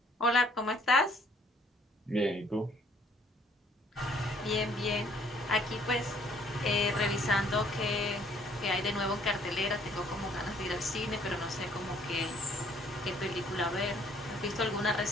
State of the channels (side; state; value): both; normal; correlation 0.61